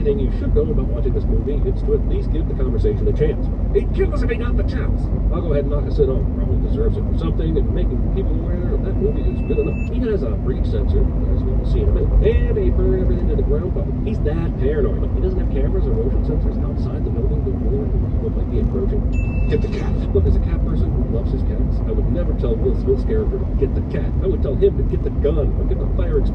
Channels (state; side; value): identical; both; correlation 1.00